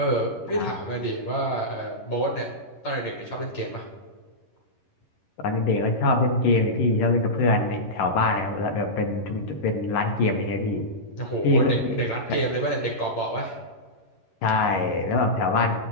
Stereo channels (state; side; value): late; right; 11 ms